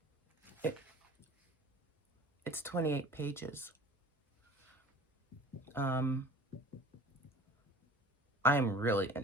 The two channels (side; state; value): both; normal; correlation 0.44